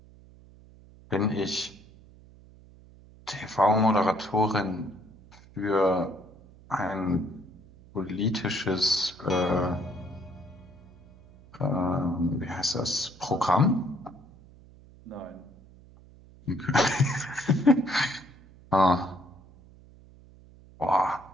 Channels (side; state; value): right; noise; hum, 23 dB below the sound